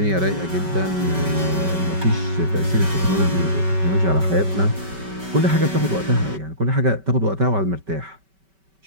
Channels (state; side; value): late; left; 5.2 ms